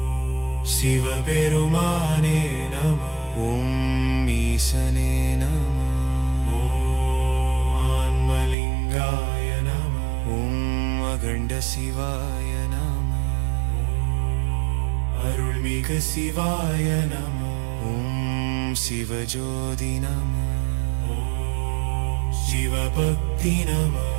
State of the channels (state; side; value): drops out; left; at 8.6 s